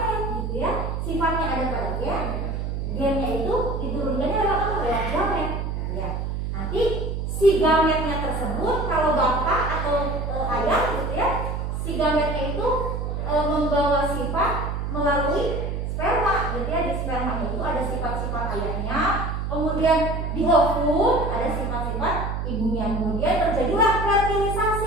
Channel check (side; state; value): right; noise; hum, 2 dB below the sound